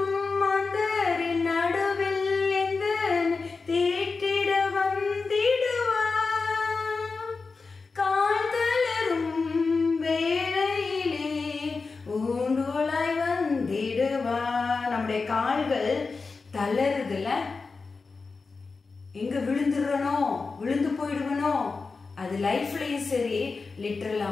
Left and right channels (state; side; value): quieter; right; 4.3 dB